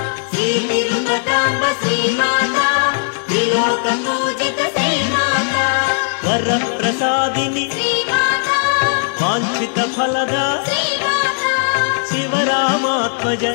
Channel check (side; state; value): right; silent; digital silence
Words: శ్రీ తిరుపతాంబ శ్రీమాత త్రిలోక పూజిత శ్రీమాత వరప్రసాదిని వాంఛిత ఫలదా శివరామాత్మజ